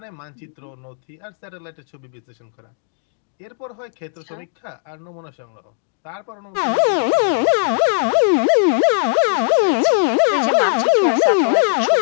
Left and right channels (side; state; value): right; silent; digital silence